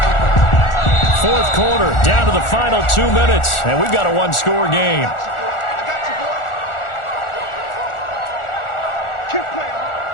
Fourth quarter, down to the final 2 minutes, and we've got a one-score game.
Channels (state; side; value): late; right; 1.4 ms